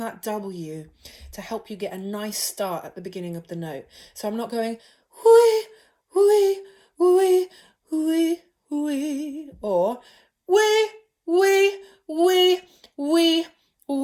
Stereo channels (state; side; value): identical; both; correlation 1.00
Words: W to help you get a nice start at the beginning of the note. So I'm not going wee, or